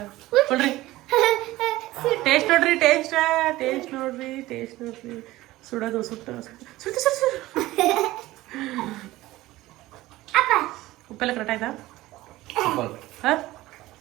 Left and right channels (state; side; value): quieter; left; 17.5 dB